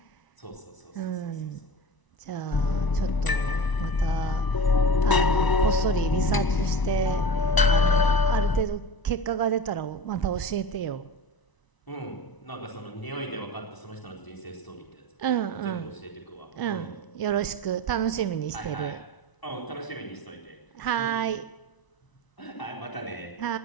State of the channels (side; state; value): right; late; 1.0 ms